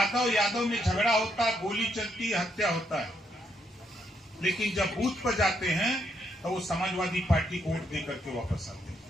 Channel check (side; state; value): both; normal; correlation 0.76